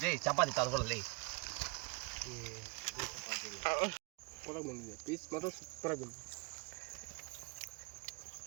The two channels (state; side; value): quieter; left; 30.4 dB